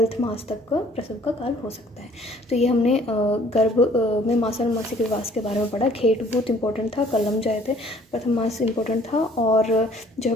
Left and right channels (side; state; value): both; normal; correlation 0.57